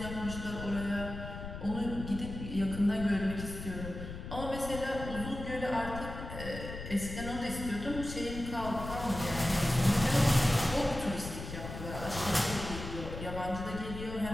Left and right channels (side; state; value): left; noise; rumble, 8 dB below the sound